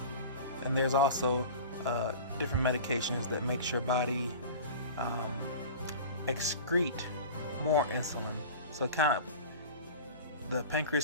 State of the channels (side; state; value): both; inverted; correlation -0.36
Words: And there's also different medications that makes your body excrete more insulin. So the